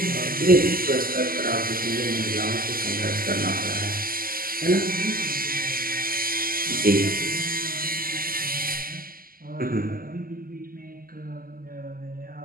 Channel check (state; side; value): late; left; 0.42 ms